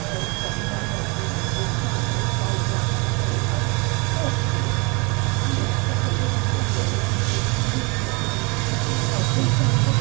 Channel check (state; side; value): quieter; left; 29.4 dB